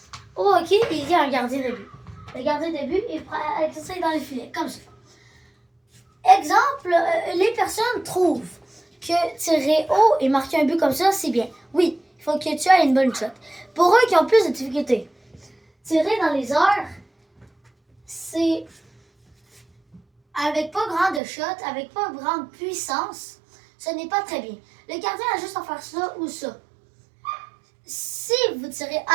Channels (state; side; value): drops out; left; at 21.2 s